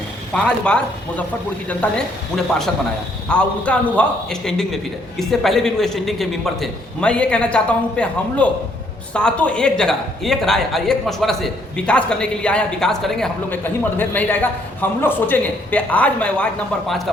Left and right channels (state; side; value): normal; both; correlation 0.68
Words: हैं। 5 बार मुजफ्फरपुर की जनता ने उन्हें पार्षद बनाया और उनका अनुभव स्टैंडिंग में फिर है। इससे पहले भी वो स्टैंडिंग के मेंबर थे। मैं ये कहना चाहता हूँ कि हम लोग सातों एक जगह एक राय और एक मशवरा से विकास करने के लिए आए हैं। विकास करेंगे, हम लोग में कहीं मतभेद नहीं रहेगा। हम लोग सोचेंगे कि आज मैं वार्ड नंबर 5 का